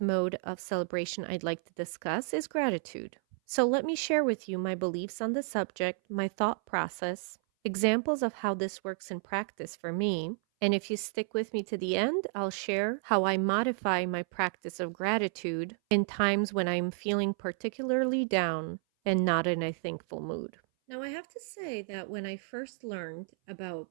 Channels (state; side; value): silent; left; 57 dB below the other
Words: mode of celebration I'd like to discuss is gratitude. So let me share with you my beliefs on the subject, my thought process, examples of how this works in practice for me, and if you stick with me to the end, I'll share how I modify my practice of gratitude in times when I'm feeling particularly down and not in a thankful mood. Now, I have to say that when I first learned